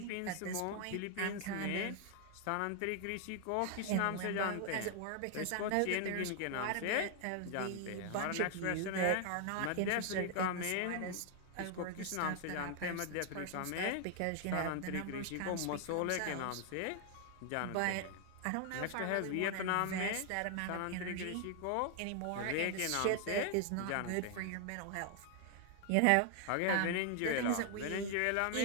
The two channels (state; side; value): different; both; correlation 0.00